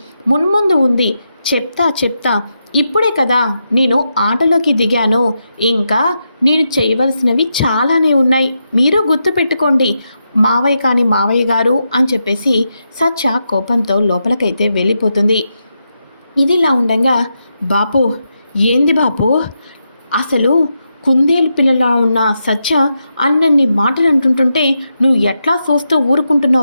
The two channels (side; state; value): both; inverted; correlation -0.85